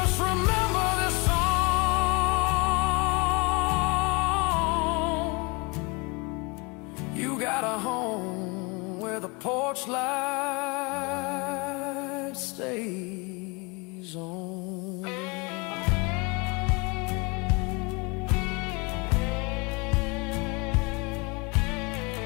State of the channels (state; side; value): quieter; right; 28.9 dB